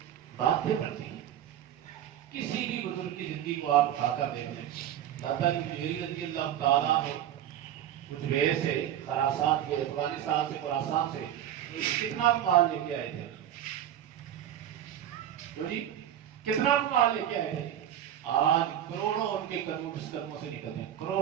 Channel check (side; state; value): left; quieter; 11.0 dB